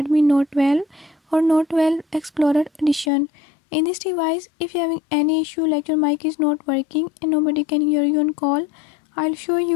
Note 12 or Note 12 Explorer Edition. In this device, if you're having any issue like your mic is not working and nobody can hear you on call, I'll show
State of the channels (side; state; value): right; drops out; at 3.1 s